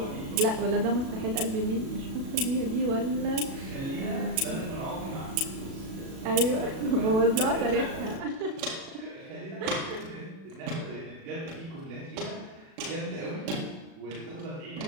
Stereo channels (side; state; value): left; late; 37 ms